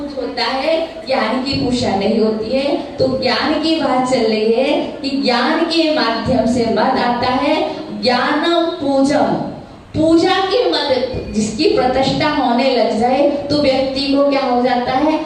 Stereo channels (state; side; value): identical; both; correlation 1.00